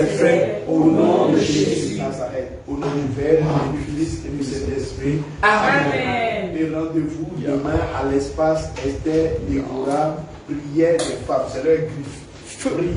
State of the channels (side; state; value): both; identical; correlation 1.00